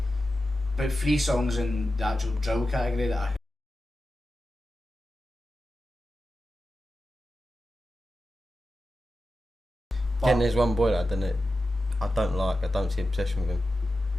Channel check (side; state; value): both; normal; correlation 0.92